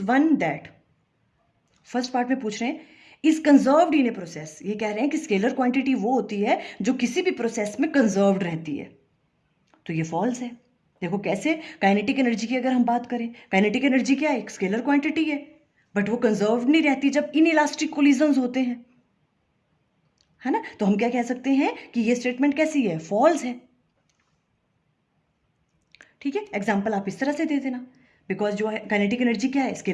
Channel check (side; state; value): both; identical; correlation 1.00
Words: one that, first part में पूछ रहे हैं is conserved in a process, ये कह रहे हैं कि स्केलर क्वांटिटी वो होती है जो किसी भी प्रोसेस में कंजर्व्ड रहती है, तो ये फॉल्स है। देखो कैसे, काइनेटिक एनर्जी की अगर हम बात करें, काइनेटिक एनर्जी क्या है, एक स्केलर क्वांटिटी है, बट वो कंजर्व नहीं रहती जब इनइलास्टिक कोलिजन्स होते हैं, है ना। तो हम क्या कह सकते हैं कि ये स्टेटमेंट कैसी है, फॉल्स है, ठीक है। एग्जाम्पल आप इस तरह से दे देना, बिकॉज जो है काइनेटिक एनर्जी क्या है,